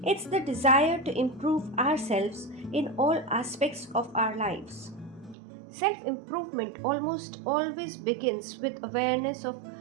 It's the desire to improve ourselves in all aspects of our lives. Self improvement almost always begins with awareness of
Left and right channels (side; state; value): left; drops out; at 5.4 s